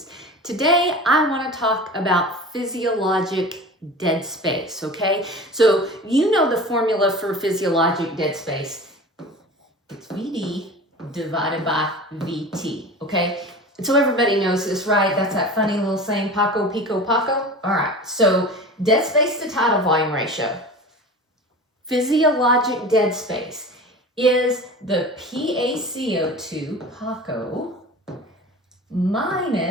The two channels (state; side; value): normal; both; correlation 0.35